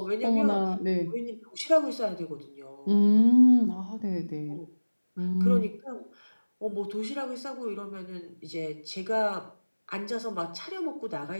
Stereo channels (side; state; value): both; inverted; correlation -1.00